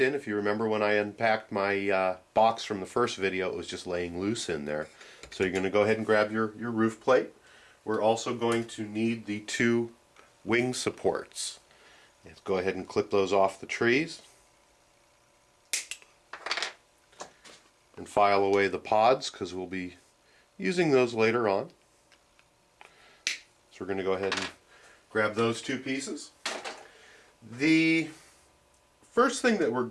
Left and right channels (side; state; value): both; identical; correlation 1.00